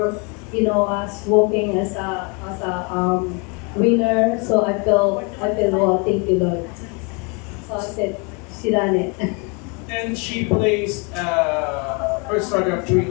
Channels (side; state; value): right; quieter; 32.7 dB